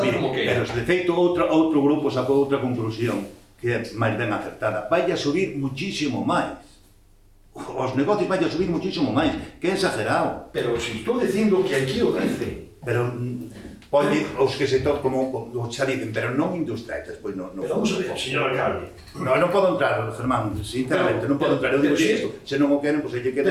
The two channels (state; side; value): identical; both; correlation 1.00